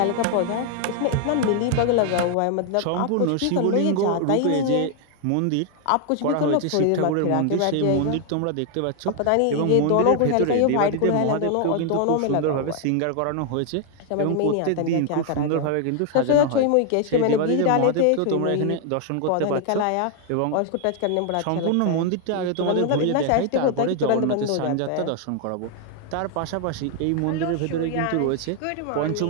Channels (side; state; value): both; different; correlation 0.00